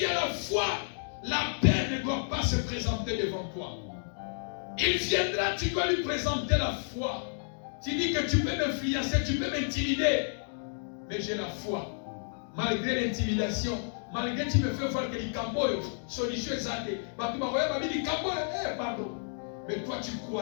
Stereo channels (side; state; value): right; silent; digital silence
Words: as la foi, la peur ne doit pas se présenter devant toi. Il viendra, tu dois lui présenter la foi. Tu dis que tu peux m'influencer, tu peux m'intimider. Mais j'ai la foi. Malgré l'intimidation, malgré que tu me fais voir que les camboyos, solution est zadée. Pardon. Mais toi tu